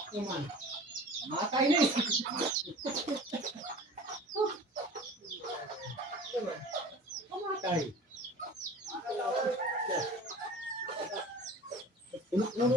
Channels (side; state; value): both; normal; correlation 0.41